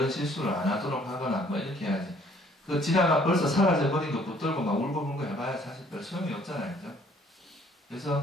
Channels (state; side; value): normal; both; correlation 0.60